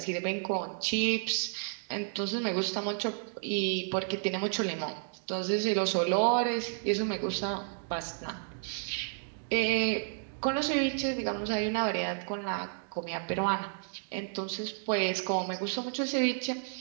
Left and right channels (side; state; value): left; silent; digital silence